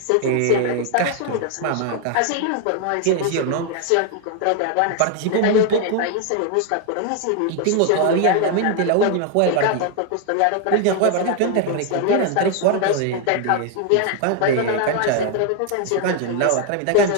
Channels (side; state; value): both; different; correlation 0.00